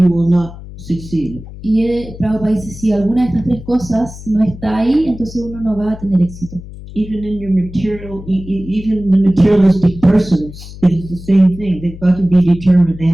will not succeed. Y Prabhupada dice, si alguna de estas tres cosas no está ahí, entonces uno no va a tener éxito. Even in your material, even the materialistic persons, it is the same thing. They've got to be determined. They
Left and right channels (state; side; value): noise; left; hum, 15 dB below the sound